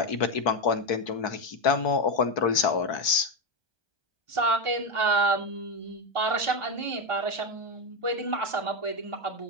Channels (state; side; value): late; right; 1.2 ms